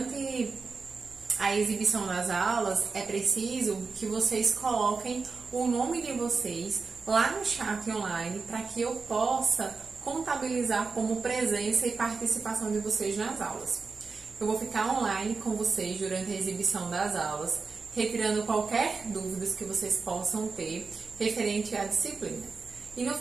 a exibição das aulas é preciso que vocês coloquem o nome de vocês lá no chat online para que eu possa contabilizar como presença e participação de vocês nas aulas. Eu vou ficar online com vocês durante a exibição das aulas, retirando qualquer dúvidas que vocês possam ter referente à disciplina. E no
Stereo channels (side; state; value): left; quieter; 4.5 dB